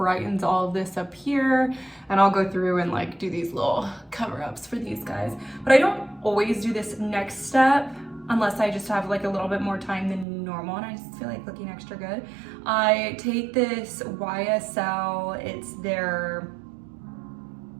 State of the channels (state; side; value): drops out; left; at 10.2 s